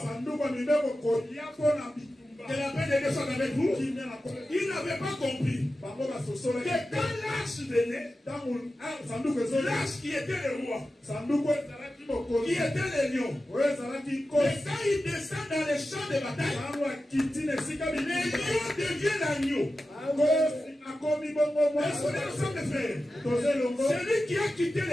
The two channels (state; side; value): normal; both; correlation 0.93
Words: Que la paix de Dieu soit avec vous. Ils n'avaient pas compris que quand l'âge venait, l'âge qui était le roi, qui était le lion, et quand il descend dans les champs de bataille, les lions deviennent l'agneau. Est-ce qu'on est ensemble, frères? Celui qui a quitté